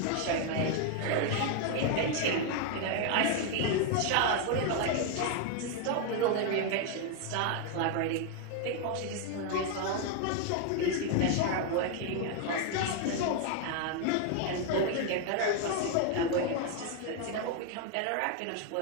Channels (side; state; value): both; different; correlation 0.01